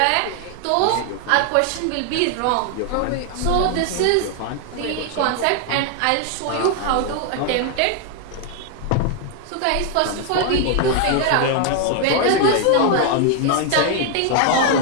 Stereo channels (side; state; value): both; different; correlation 0.00